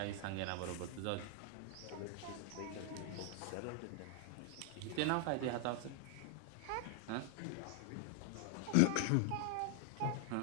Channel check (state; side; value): different; both; correlation 0.00